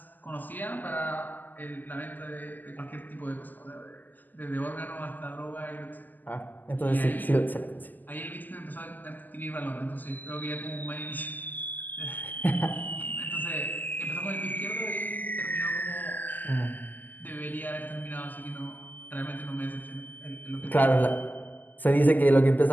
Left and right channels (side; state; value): right; late; 0.085 ms